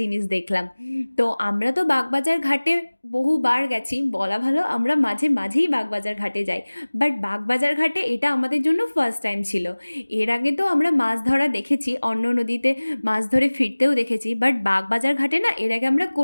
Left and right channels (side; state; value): both; inverted; correlation -1.00